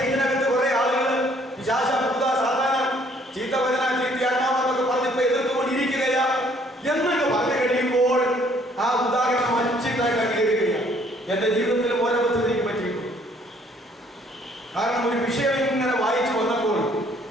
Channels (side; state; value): both; normal; correlation 0.62